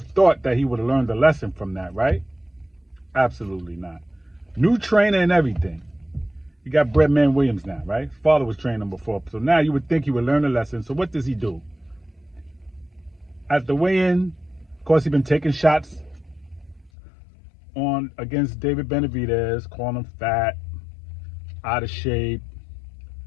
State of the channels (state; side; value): drops out; right; at 16.9 s